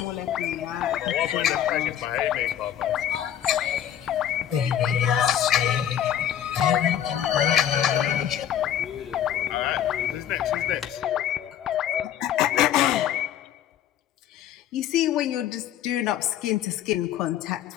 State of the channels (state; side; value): quieter; right; 10.3 dB